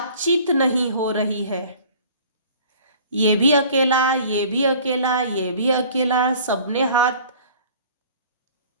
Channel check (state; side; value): inverted; both; correlation -0.49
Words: नहीं हो रही है। ये भी अकेला, ये भी अकेला, ये भी अकेला, सबने हाथ,